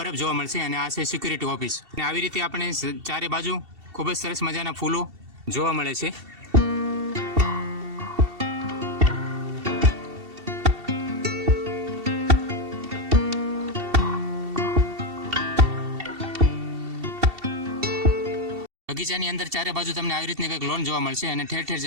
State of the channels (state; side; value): late; left; 2.7 ms